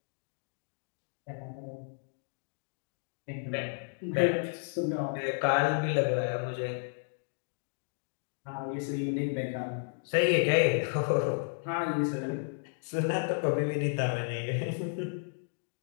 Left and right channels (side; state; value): right; silent; digital silence